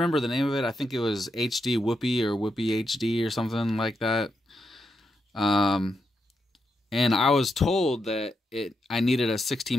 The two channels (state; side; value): normal; both; correlation 0.84